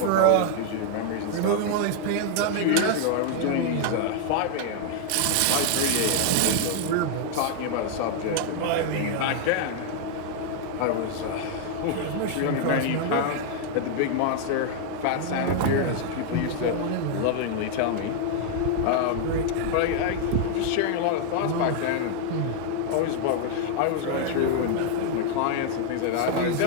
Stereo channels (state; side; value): different; both; correlation 0.00